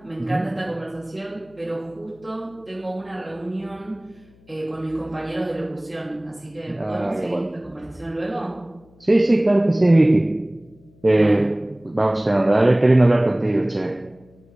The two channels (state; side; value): noise; left; hum, 29 dB below the sound